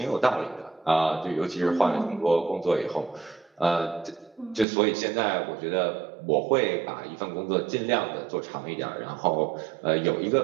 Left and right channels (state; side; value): drops out; left; at 4.7 s